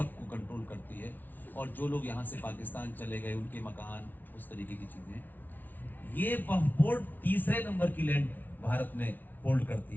कंट्रोल करती है। और जो लोग यहाँ से पाकिस्तान चले गए उनके मकान, उस तरीके की चीज़ें, ये वक्फ बोर्ड तीसरे नंबर की लैंड भारत में होल्ड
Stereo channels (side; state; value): right; late; 0.085 ms